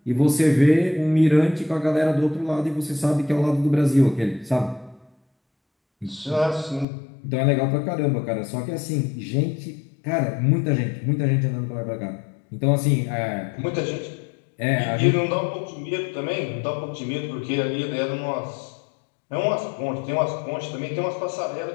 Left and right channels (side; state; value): right; drops out; at 6.9 s